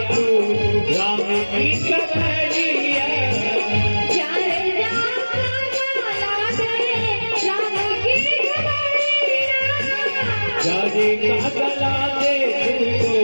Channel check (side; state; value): both; inverted; correlation -1.00